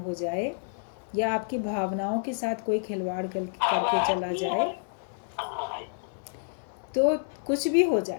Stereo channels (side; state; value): right; silent; digital silence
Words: जाए या आपकी भावनाओं के साथ कोई खिलवाड़ करके चला जाए, तो कुछ भी हो